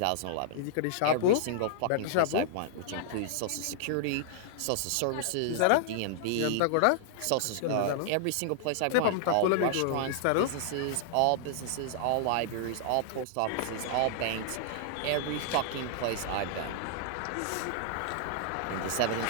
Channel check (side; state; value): both; different; correlation -0.01